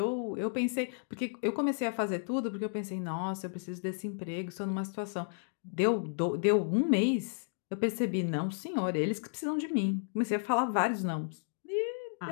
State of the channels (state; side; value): silent; right; digital silence